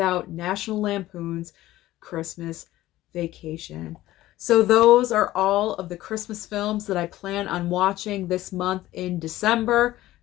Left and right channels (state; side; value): quieter; right; 15.8 dB